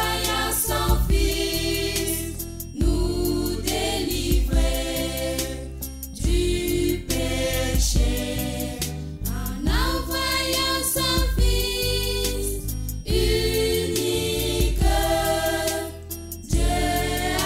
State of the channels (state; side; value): identical; both; correlation 1.00